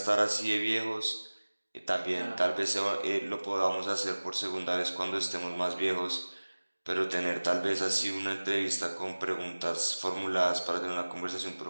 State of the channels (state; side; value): inverted; both; correlation -1.00